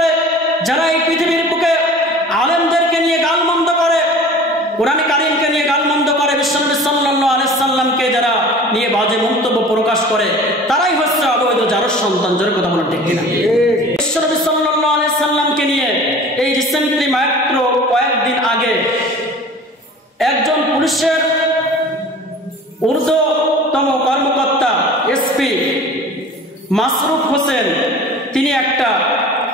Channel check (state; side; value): normal; both; correlation 0.42